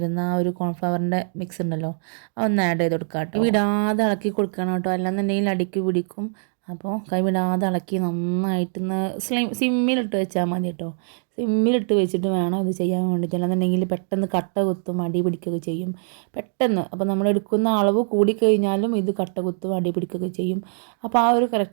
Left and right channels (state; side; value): silent; left; digital silence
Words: ആ ഒരു കോൺഫ്ലവറിൻ്റെ മിക്സ് ഉണ്ടല്ലോ, അതൊന്ന് ആഡ് ചെയ്ത് കൊടുക്കുക കേട്ടോ. വിടാതെ ഇളക്കി കൊടുക്കണം കേട്ടോ, അല്ലാന്നുണ്ടെങ്കിൽ അടിക്ക് പിടിക്കും. അപ്പോൾ കൈവിടാതെ ഇളക്കി നന്നായിട്ടൊന്ന് സിമ്മിലിട്ട് വെച്ചാൽ മതി കേട്ടോ. സിമ്മിലിട്ട് വെച്ചിട്ട് വേണം ഇത് ചെയ്യാൻ വേണ്ടിയിട്ട്. അല്ലാന്നുണ്ടെങ്കിൽ പെട്ടെന്ന് കട്ട കുത്തും, അടി പിടിക്കുകയൊക്കെ ചെയ്യും പെട്ടെന്ന്. അപ്പോൾ നമ്മൾ എടുക്കുന്ന അളവ് കൂടിക്കഴിഞ്ഞാലും ഇത് കട്ട കുത്തും, അടി പിടിക്കുകയൊക്കെ ചെയ്യും. അപ്പോൾ ആ ഒരു